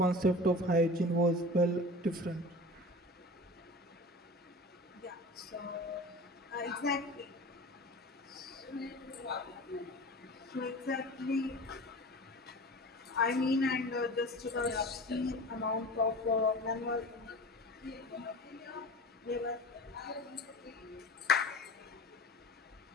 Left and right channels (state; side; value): normal; both; correlation 0.36